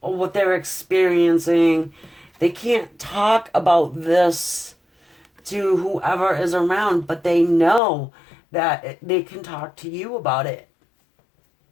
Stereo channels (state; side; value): drops out; right; at 7.8 s